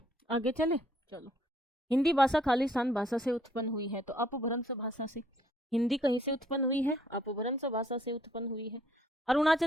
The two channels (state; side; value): normal; both; correlation 0.64